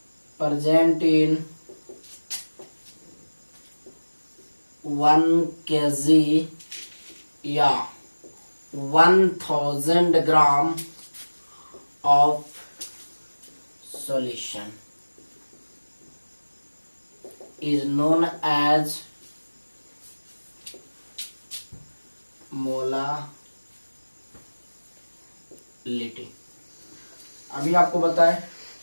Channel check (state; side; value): inverted; both; correlation -1.00